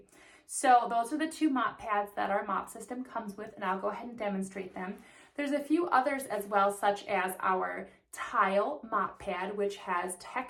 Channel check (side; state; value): both; identical; correlation 1.00